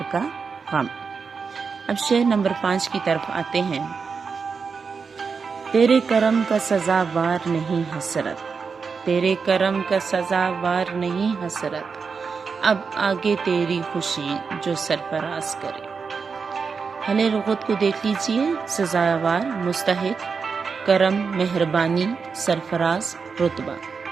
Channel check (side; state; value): left; quieter; 5.4 dB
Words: کا غم۔ اب شعر نمبر 5 کی طرف آتے ہیں۔ تیرے کرم کا سزاوار نہیں حسرت، تیرے کرم کا سزاوار نہیں حسرت، اب آگے تیری خوشی جو سرفراز کرے۔ حل لغت کو دیکھ لیجئے، سزاوار مستحق، کرم مہربانی، سرفراز رتبہ۔